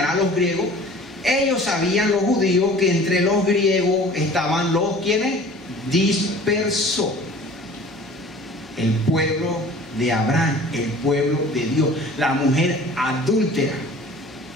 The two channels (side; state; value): both; normal; correlation 0.46